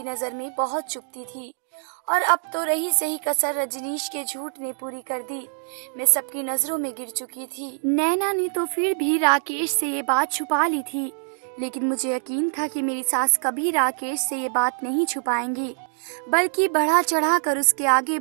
नज़र में बहुत चुभती थी, और अब तो रही सही कसर रजनीश के झूठ ने पूरी कर दी। मैं सबकी नज़रों में गिर चुकी थी। नैना ने तो फिर भी राकेश से ये बात छुपा ली थी, लेकिन मुझे यकीन था कि मेरी सास कभी राकेश से ये बात नहीं छुपाएंगी, बल्कि बढ़ा चढ़ा कर उसके आगे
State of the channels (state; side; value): silent; left; 62 dB below the other